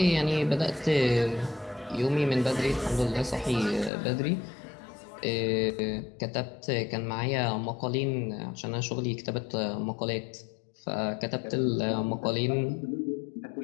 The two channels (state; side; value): drops out; right; at 3.9 s